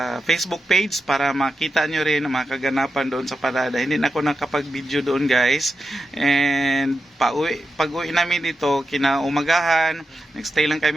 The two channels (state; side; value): normal; both; correlation 0.89